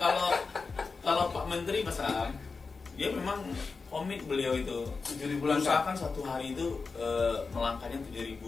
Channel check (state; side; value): quieter; right; 4.5 dB